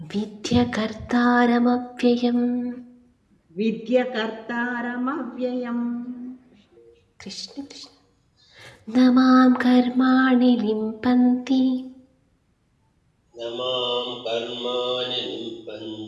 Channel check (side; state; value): both; identical; correlation 1.00